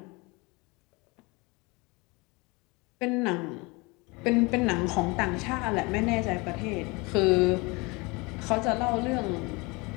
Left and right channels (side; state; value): right; quieter; 26.4 dB